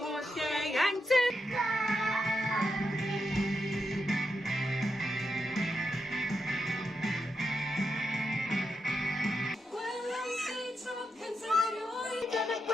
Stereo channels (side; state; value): both; normal; correlation 0.85